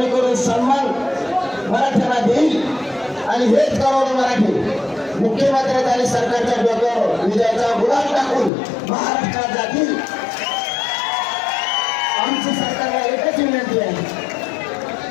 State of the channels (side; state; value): right; drops out; at 8.5 s